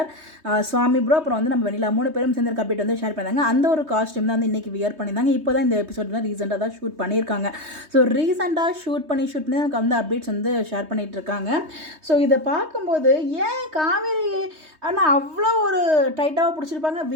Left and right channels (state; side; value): late; left; 3.2 ms